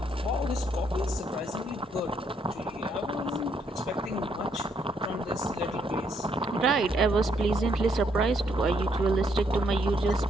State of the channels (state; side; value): normal; both; correlation 0.72